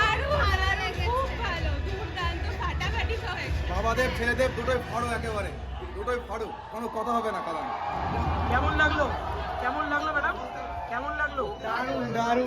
ভালো লেগেছে। খুব ভালো, দুর্দান্ত ফাটাফাটি সব হয়েছে। বাবাদেব ছেলেদেব দুটোই ফাড়ো, একেবারে দুটোই ফাড়ো, কোনো কথা হবে না কালাম। কেমন লাগলো? কেমন লাগলো ম্যাডাম? কেমন লাগলো? দারুণ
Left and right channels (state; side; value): identical; both; correlation 1.00